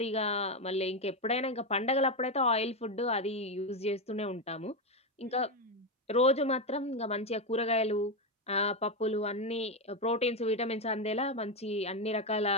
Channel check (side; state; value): both; normal; correlation 0.09